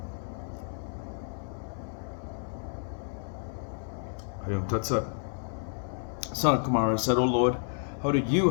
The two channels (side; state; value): right; silent; 57 dB below the other